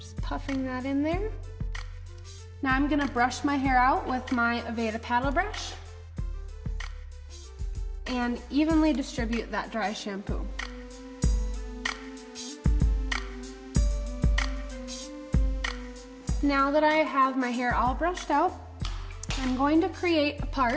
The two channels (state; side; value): identical; both; correlation 1.00